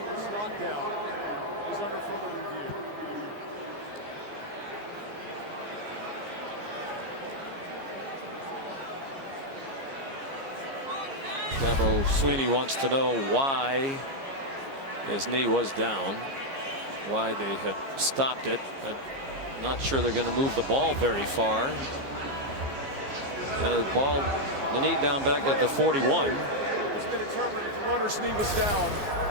was not down. It was under further review. Dabo Sweeney wants to know why his knee was down, why they had stopped it. I'm not sure they're going to move the ball very far. The knee down back at the 41. It's been determined that the runner's knee was down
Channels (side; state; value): left; late; 15 ms